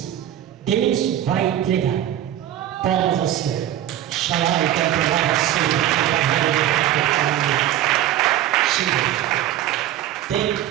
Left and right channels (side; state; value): left; quieter; 12.2 dB